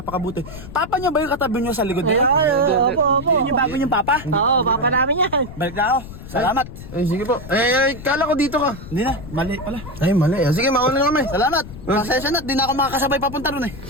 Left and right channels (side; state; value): left; noise; rumble, 13 dB below the sound